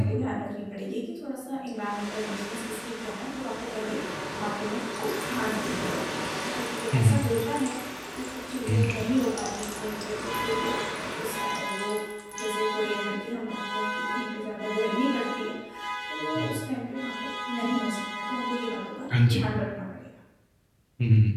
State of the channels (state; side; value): identical; both; correlation 1.00